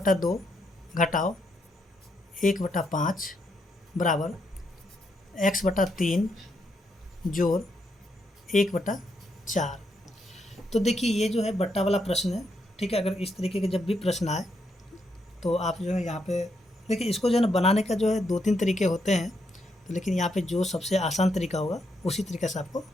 घटाओ 1/5 बराबर x/3 जोड़ 1/4। तो देखिए ये जो है बट्टा वाला प्रश्न है, ठीक है। अगर इस तरीके के जब भी प्रश्न आए तो आप जो है यहाँ पे देखिए, इसको जो है ना बनाने का जो है 2-3 तरीके होते हैं, तो लेकिन यहाँ पे जो सबसे आसान तरीका होगा उसी तरीके से आपको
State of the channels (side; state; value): both; normal; correlation 0.78